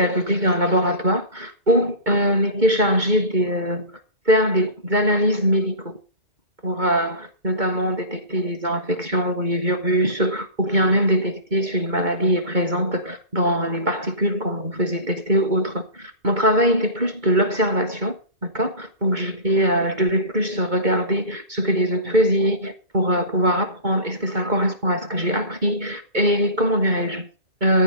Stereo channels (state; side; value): late; left; 2.2 ms